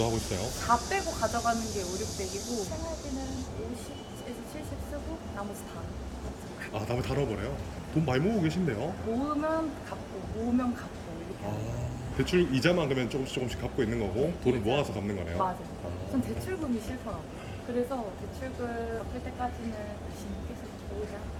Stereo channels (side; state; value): both; identical; correlation 1.00